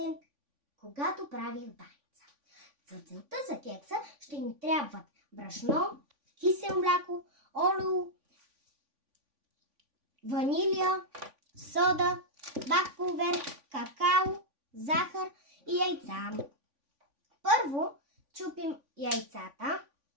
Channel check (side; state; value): left; late; 3.5 ms